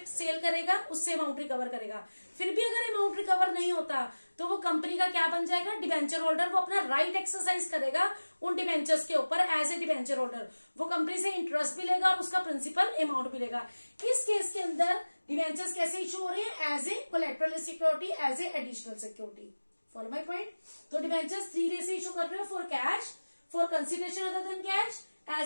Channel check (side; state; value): both; inverted; correlation -1.00